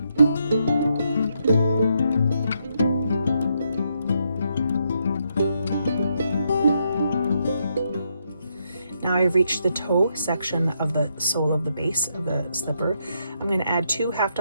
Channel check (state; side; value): inverted; both; correlation -0.78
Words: reached the toe section of the sole of the base of the slipper, I'm going to add 2 half